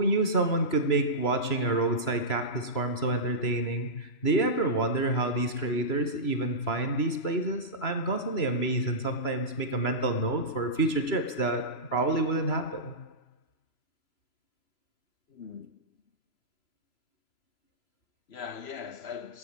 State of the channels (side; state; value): right; late; 3.0 ms